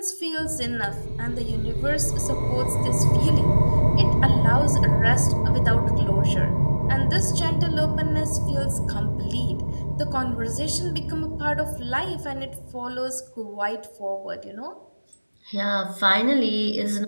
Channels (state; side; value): inverted; both; correlation -1.00